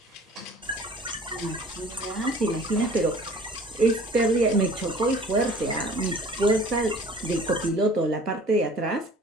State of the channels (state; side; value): normal; both; correlation 0.48